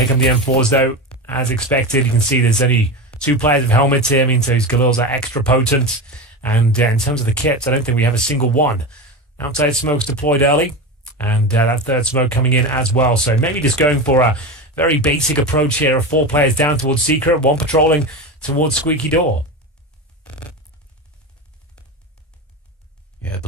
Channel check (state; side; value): normal; both; correlation 0.22